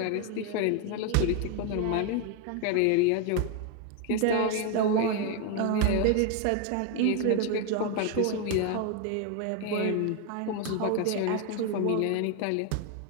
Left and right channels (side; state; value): both; different; correlation 0.01